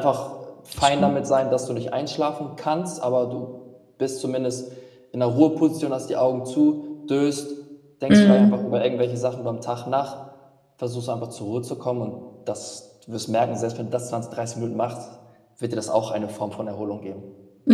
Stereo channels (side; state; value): both; identical; correlation 1.00